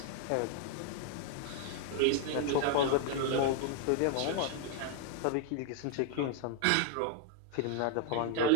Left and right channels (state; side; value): different; both; correlation 0.00